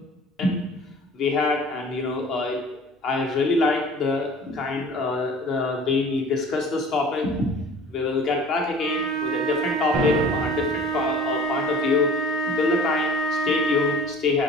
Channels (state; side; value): normal; both; correlation 0.45